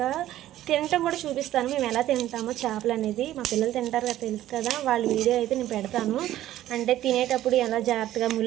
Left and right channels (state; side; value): quieter; left; 13.5 dB